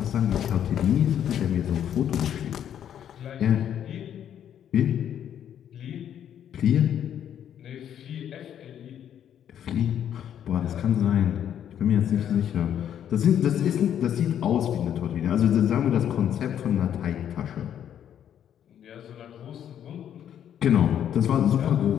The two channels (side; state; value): right; quieter; 9.7 dB